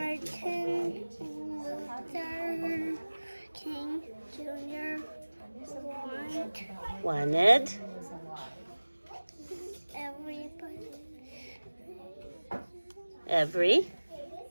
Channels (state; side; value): inverted; both; correlation -1.00